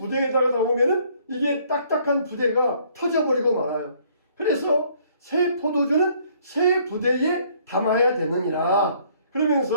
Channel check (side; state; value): both; inverted; correlation -0.62